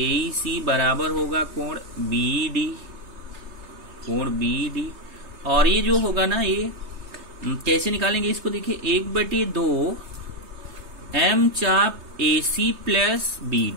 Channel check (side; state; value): left; late; 3.3 ms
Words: बराबर होगा कोण BD, कोण BD। और ये जो होगा ना, ये कैसे निकालेंगे इसको? देखिए 1/2 M चाप AC प्लस